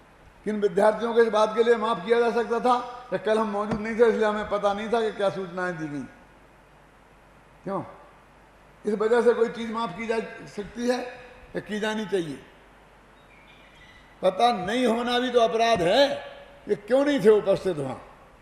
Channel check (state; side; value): identical; both; correlation 1.00